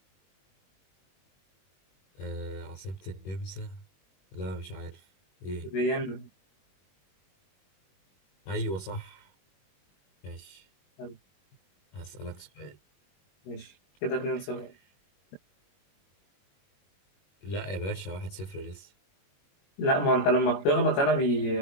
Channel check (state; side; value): late; right; 21 ms